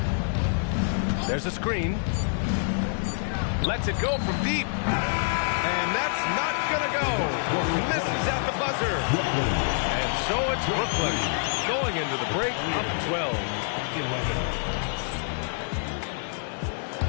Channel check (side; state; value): right; silent; digital silence